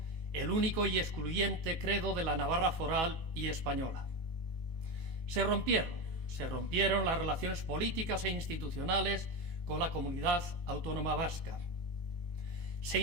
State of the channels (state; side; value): late; left; 19 ms